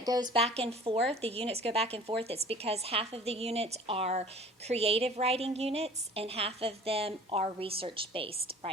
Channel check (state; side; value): normal; both; correlation 0.46